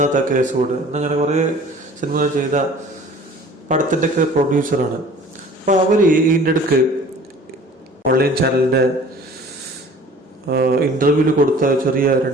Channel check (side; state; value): both; normal; correlation 0.48